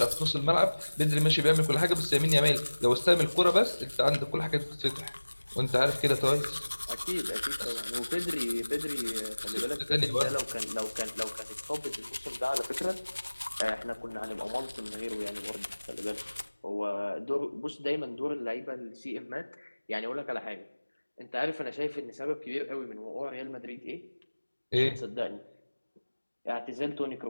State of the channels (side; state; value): both; inverted; correlation -1.00